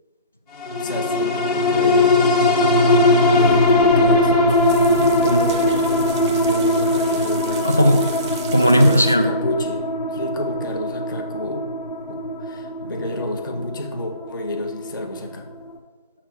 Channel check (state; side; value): inverted; both; correlation -0.38